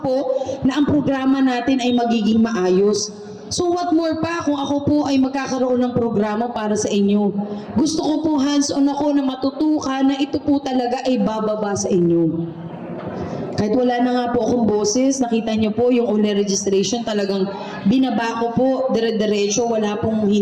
po na ang programa natin ay magiging maayos. So what more pa kung ako po ay magkakaroon ng programa para sa inyo. Gusto ko po hands-on ako na matutukan na ito po talaga ay bababa sa inyo. Kahit wala na nga po akong boses, nakita niyo po yung owner registration, talagang binaba ko po, dire-diretso, wala pong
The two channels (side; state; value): both; identical; correlation 1.00